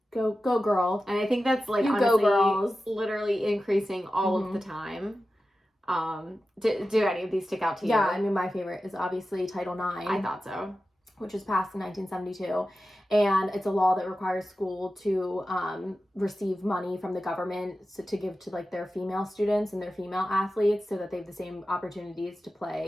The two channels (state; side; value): normal; both; correlation 0.93